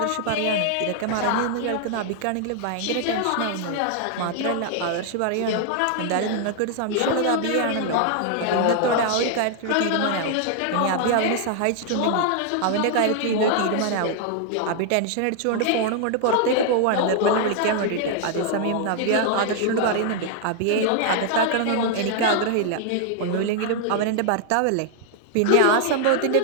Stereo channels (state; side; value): different; both; correlation 0.00